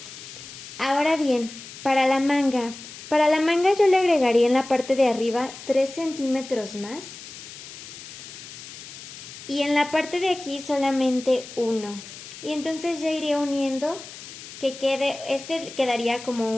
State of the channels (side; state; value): left; noise; hiss, 14 dB below the sound